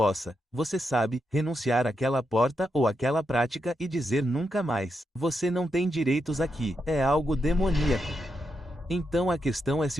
você sabe, renunciar àquela porta ou àquela prática e dizer nunca mais. Você não tem direitos aqui, é algo demoníaco. Então a questão é se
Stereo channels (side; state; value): both; normal; correlation 0.84